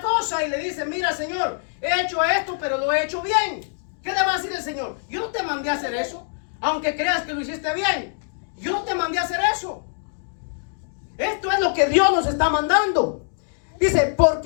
cosa y le dice, mira, Señor, he hecho esto, pero lo he hecho bien. ¿Qué le va a decir el Señor? Yo no te mandé a hacer eso, aunque creas que lo hiciste bien. Yo no te mandé a hacer eso. Esto es lo que Dios nos está mandando. Dice,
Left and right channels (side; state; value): right; silent; digital silence